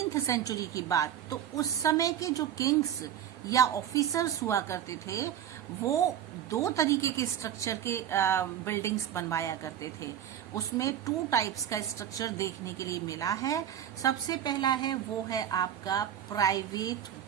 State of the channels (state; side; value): quieter; left; 10.1 dB